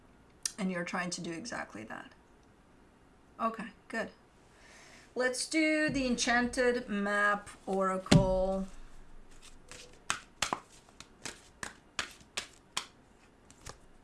And you're trying to do exactly that. Okay, good. Let's do the Enchanted Map Oracle.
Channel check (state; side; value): identical; both; correlation 1.00